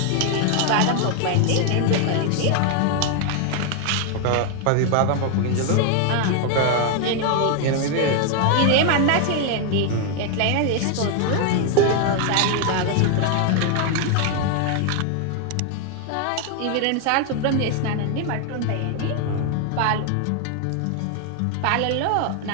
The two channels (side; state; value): both; different; correlation 0.00